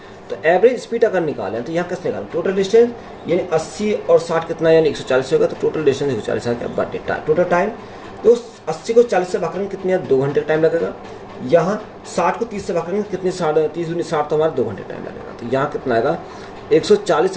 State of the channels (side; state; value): both; identical; correlation 1.00